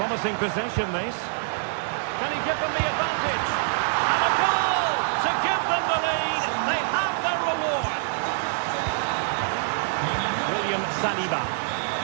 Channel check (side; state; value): left; silent; digital silence